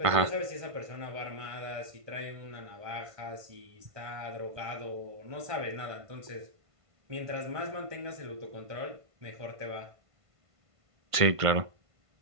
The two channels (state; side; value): late; left; 1.5 ms